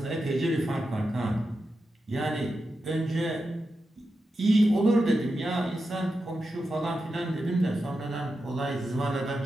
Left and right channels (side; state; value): both; normal; correlation 0.89